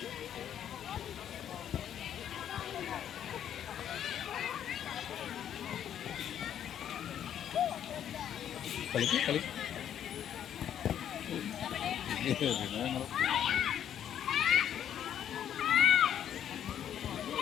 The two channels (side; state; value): right; quieter; 9.8 dB